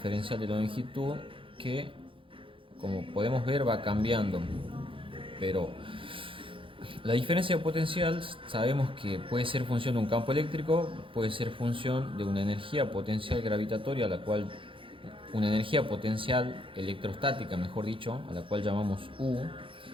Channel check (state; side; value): late; left; 0.25 ms